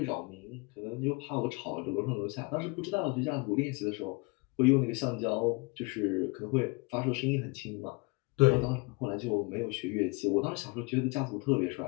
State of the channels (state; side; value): quieter; right; 28.5 dB